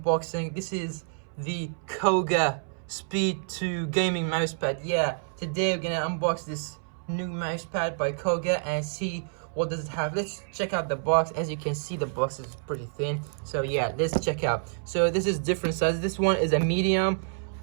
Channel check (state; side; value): silent; left; 59 dB below the other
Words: This is the Cougar Speed 2 gaming mousepad. Yeah, today we're gonna unbox this new mousepad by Cougar and see what does it have. Let's check out the box. As you can see, the box is pretty thin. So yeah, let's check out. So this is different sizes. This one is a medium.